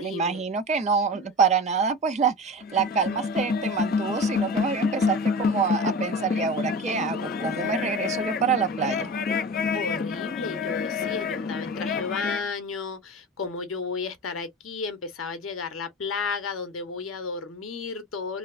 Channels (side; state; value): both; normal; correlation 0.31